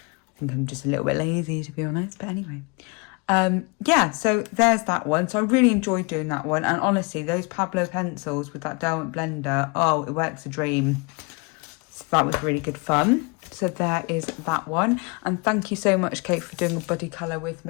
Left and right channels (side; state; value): right; quieter; 30.4 dB